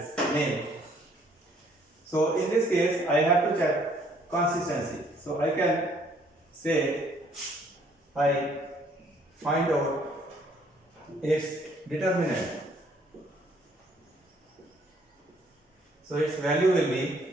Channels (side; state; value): both; normal; correlation 0.63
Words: name. So in this case I have to check consistency. So I can say I find out its determinant. So its value will